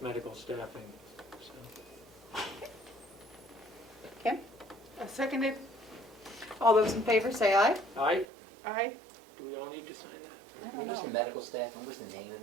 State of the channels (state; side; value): drops out; left; at 8.2 s